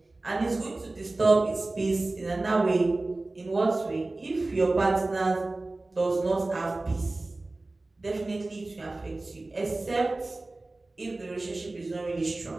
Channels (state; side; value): quieter; left; 3.0 dB